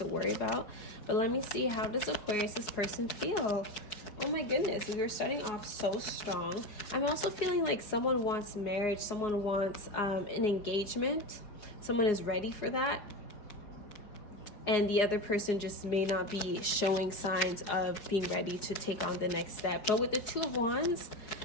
worry about. But let me see, how does Aquarius, this person, feel? Oh my goodness, we were starting off so strong. I'm also feeling like someone wants marriage, someone wants an engagement, someone is ready for that, and the other person just may not be showing signs of being ready to take on the next step. But with the Two of Wands,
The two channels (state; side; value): late; right; 4.9 ms